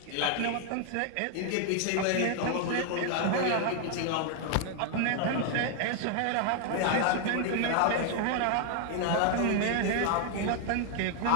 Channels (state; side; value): different; both; correlation 0.00